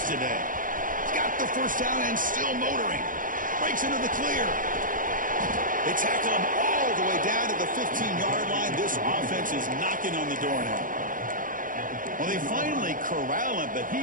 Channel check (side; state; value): left; late; 0.39 ms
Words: today. He's got the first down and still motoring. Breaks into the clear. They tackle him all the way down to the 15-yard line. This offense is knocking on the door now. Well, they finally corral him, but